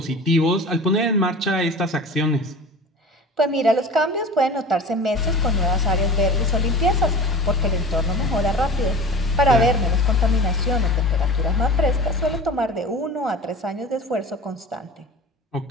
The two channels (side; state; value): both; normal; correlation 0.37